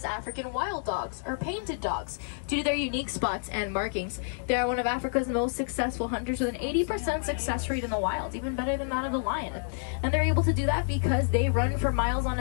African wild dogs, or painted dogs, due to their unique spots and markings. They are one of Africa's most successful hunters with an 80% success rate in the wild, even better than that of the lion. And they're able to do that because they run for miles on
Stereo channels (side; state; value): right; silent; digital silence